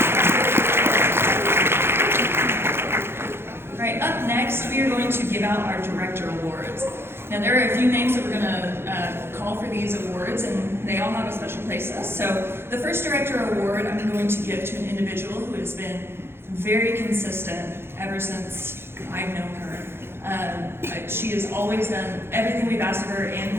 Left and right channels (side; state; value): left; late; 0.11 ms